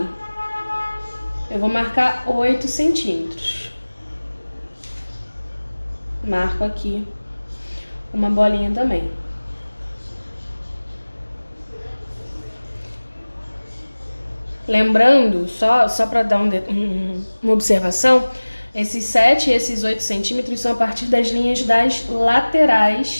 eu vou marcar 8 centímetros. Marco aqui uma bolinha também. Lembrando, só para dar uma observação, esses 7 e esses 8 centímetros são a partir das linhas das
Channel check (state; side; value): inverted; both; correlation -1.00